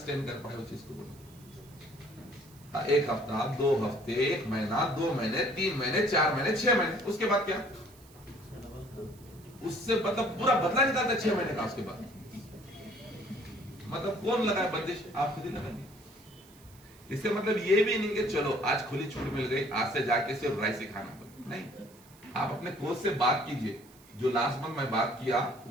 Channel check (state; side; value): noise; right; hiss, 25 dB below the sound